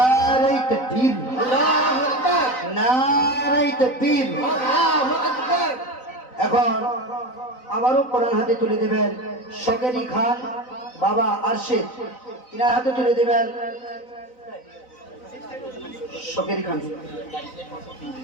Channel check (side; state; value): right; late; 3.9 ms